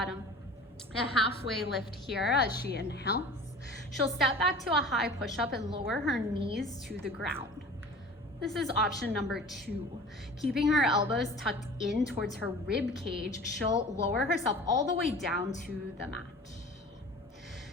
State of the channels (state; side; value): normal; both; correlation 0.41